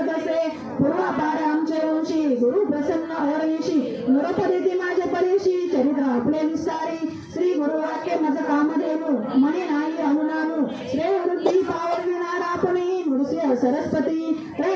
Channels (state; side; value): identical; both; correlation 1.00